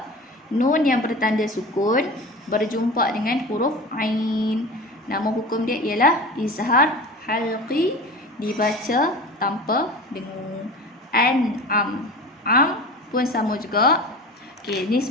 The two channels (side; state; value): both; normal; correlation 0.33